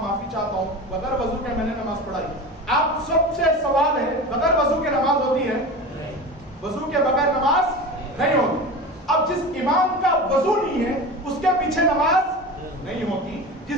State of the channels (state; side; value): normal; both; correlation 0.30